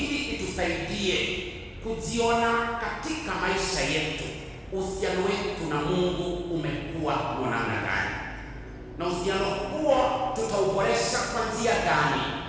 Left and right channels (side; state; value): both; identical; correlation 1.00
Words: itusaidie kujiona katika maisha yetu uhusiano wetu na Mungu umekuwa wa namna gani, na uhusiano huo tutauboresha kwa njia gani.